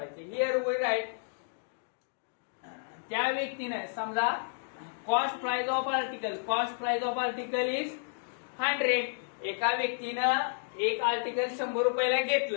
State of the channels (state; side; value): silent; right; digital silence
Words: हिअर वी राईट त्या व्यक्तीने समजा cost price of article is 100. एका व्यक्तीनं एक आर्टिकल 100 रुपयाला